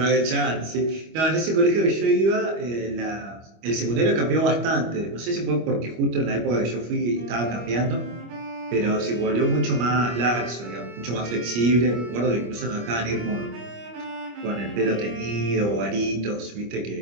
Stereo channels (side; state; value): left; late; 25 ms